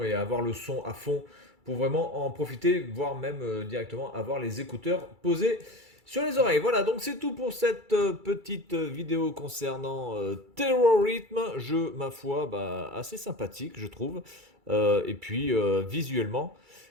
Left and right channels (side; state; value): left; late; 2.3 ms